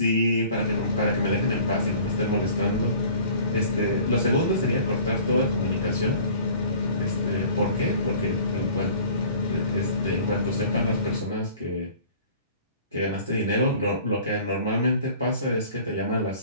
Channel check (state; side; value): inverted; both; correlation -0.48